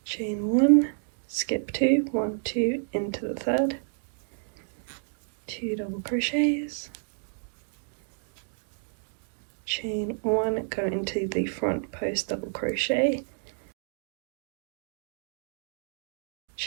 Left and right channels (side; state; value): left; silent; digital silence